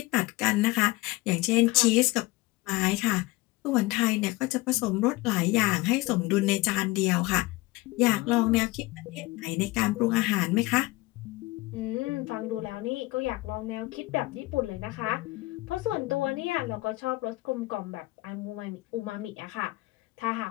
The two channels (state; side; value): quieter; right; 20.8 dB